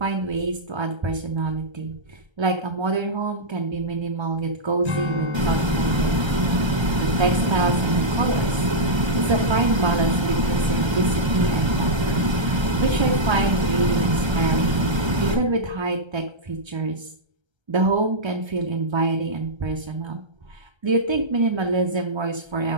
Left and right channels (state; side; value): late; left; 1.3 ms